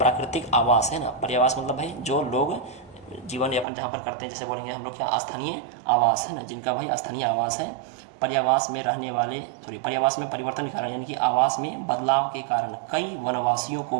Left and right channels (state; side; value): drops out; left; at 3.7 s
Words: आवास है ना, पर्यावास मतलब भाई जो लोग जीवन यापन जहाँ पर करते हैं, जैसे बोलेंगे हम लोग क्या, स्थानीय आवास है ना, जिनका भाई स्थानीय आवास है, पर्यावास में परिवर्तन के कारण, यानी कि आवास में बदलाव के कारण कई वनवासियों को